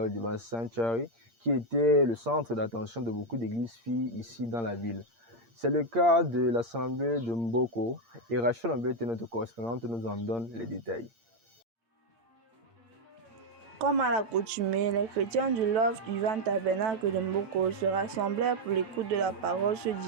Divine Sanctuary, qui était le centre d'attention de beaucoup d'églises filles ici dans la ville. C'est le cas de l'assemblée de Mboko et Rachel Ambet, notre correspondante, nous en donne les détails. Comme à l'accoutumée, les chrétiens du Love Divine Tabernacle de Mboko se rassemblèrent pour l'écoute de la parole ce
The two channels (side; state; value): left; late; 8.7 ms